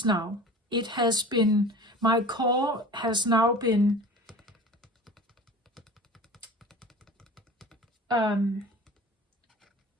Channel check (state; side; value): normal; both; correlation 0.39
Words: now. It has been, my core has now been